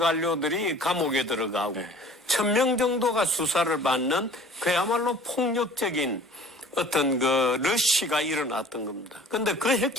감옥에 들어가고, 1000명 정도가 수사를 받는 그야말로 폭력적인 어떤 그 러시가 일어났던 겁니다. 근데 그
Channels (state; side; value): normal; both; correlation 0.48